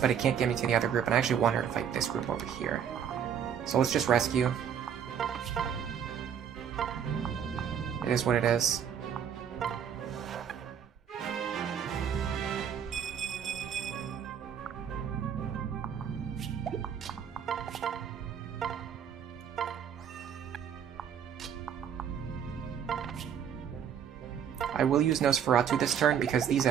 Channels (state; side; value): quieter; left; 8.3 dB